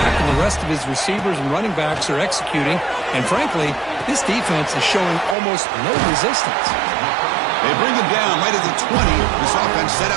and the rest of his receivers and running backs are executing. And frankly, this defense is showing almost no resistance. They bring him down right at the 20. This offense set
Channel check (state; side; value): drops out; left; at 5.4 s